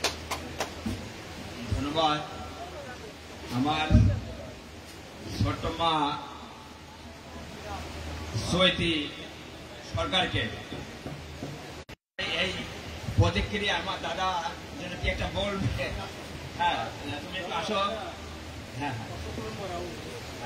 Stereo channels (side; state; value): both; identical; correlation 1.00